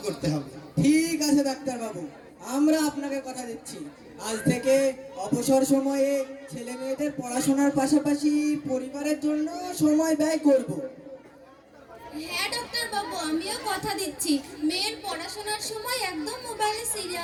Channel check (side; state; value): both; identical; correlation 1.00